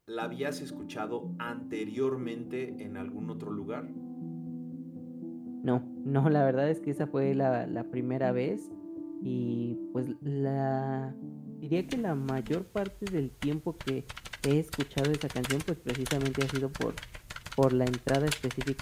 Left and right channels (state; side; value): identical; both; correlation 1.00